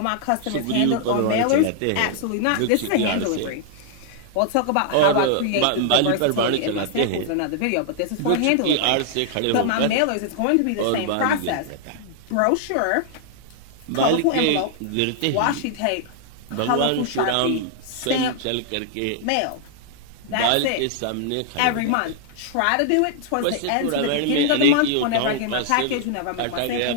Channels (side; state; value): both; different; correlation -0.01